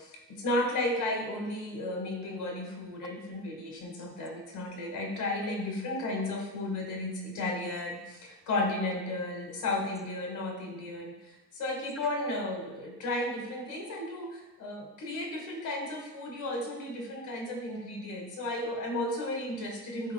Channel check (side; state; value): both; normal; correlation 0.15